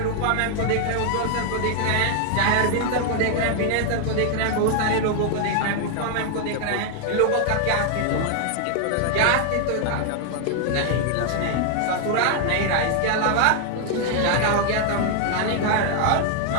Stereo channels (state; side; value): different; both; correlation 0.00